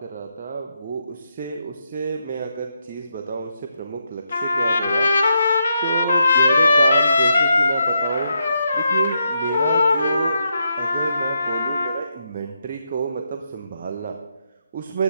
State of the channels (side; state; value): both; inverted; correlation -0.82